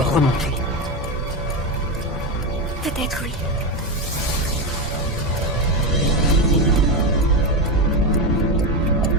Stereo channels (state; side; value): normal; both; correlation 0.13